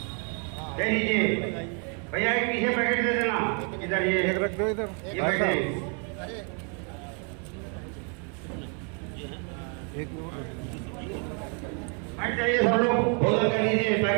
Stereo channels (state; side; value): quieter; left; 38.2 dB